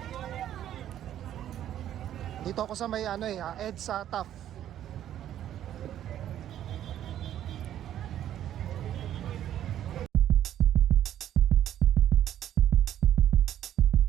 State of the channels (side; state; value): left; quieter; 11.3 dB